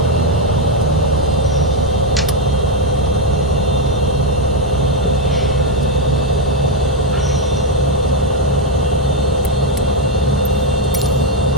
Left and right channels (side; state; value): both; normal; correlation 0.03